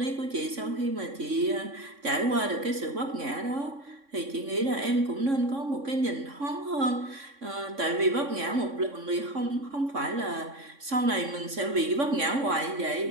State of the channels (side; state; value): left; late; 3.6 ms